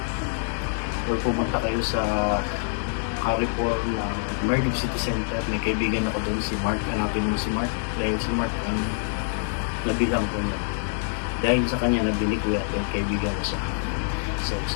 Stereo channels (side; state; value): right; silent; digital silence